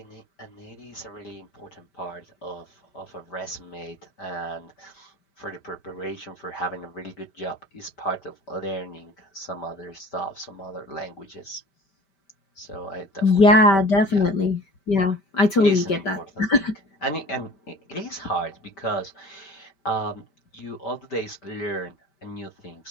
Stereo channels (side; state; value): right; late; 5.1 ms